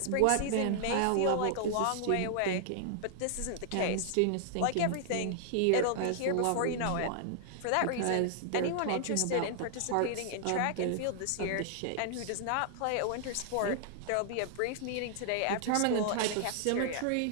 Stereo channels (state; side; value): different; both; correlation 0.00